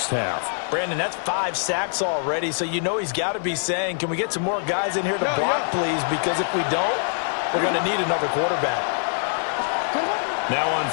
half. Brandon, that's 5 sacks already, so you know he's got to be saying, can we get some more guys in here to block, please? Because if we don't, we're going to need another quarterback. Now on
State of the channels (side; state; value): right; silent; 56 dB below the other